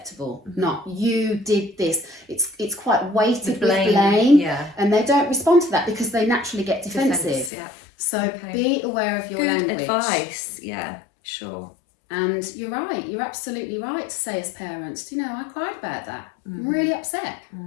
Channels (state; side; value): drops out; right; at 7.5 s